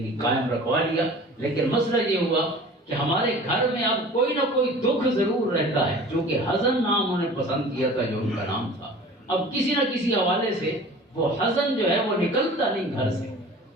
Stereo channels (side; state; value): both; normal; correlation 0.43